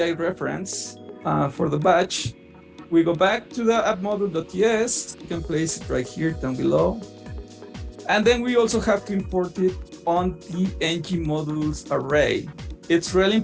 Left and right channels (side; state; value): both; identical; correlation 1.00